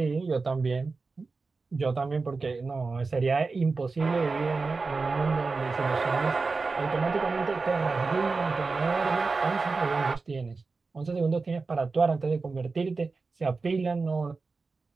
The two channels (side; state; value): left; quieter; 4.1 dB